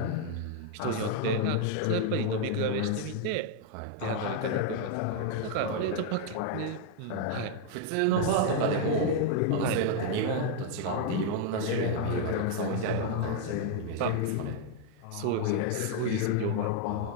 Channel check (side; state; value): both; different; correlation 0.00